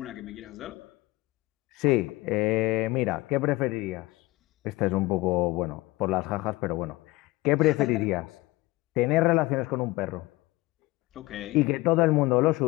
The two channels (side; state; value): right; quieter; 20.3 dB